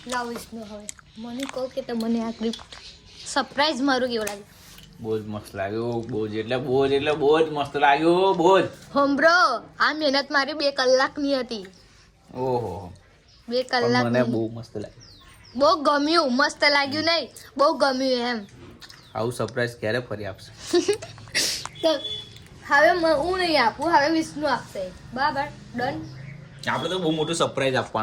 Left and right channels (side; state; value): both; identical; correlation 1.00